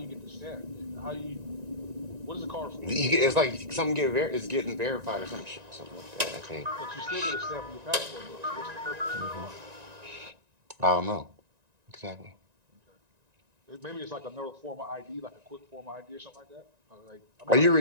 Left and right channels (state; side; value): late; left; 1.9 ms